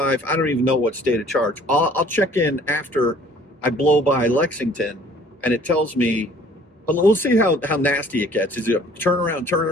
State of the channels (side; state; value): both; normal; correlation 0.55